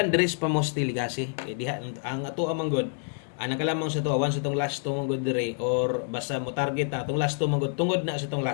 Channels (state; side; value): silent; right; 60 dB below the other